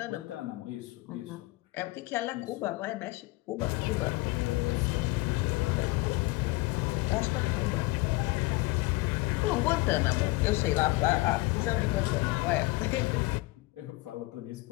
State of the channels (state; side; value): quieter; right; 22.3 dB